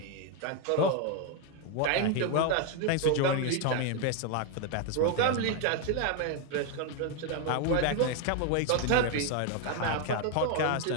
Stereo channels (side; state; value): both; different; correlation 0.01